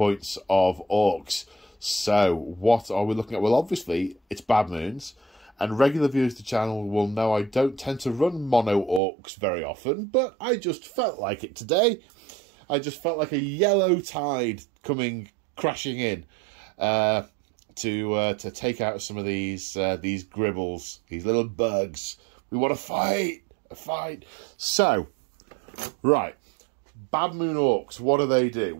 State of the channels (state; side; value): drops out; left; at 9.0 s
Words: of Orcs. So, what are we looking at? Well, obviously, it's Bad Moons. And regular viewers of the channel will know I don't tend to run mono orcs very often, but I just felt like it today. I just felt like a yellow tide coming crashing in to take out some of these gribbles, these little bugs. We want to fight, a fight. So, right, Bad Moon Orcs, what do?